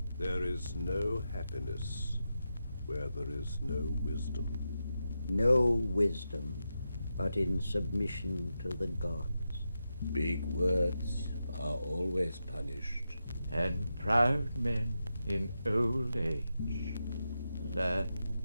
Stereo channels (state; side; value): inverted; both; correlation -0.88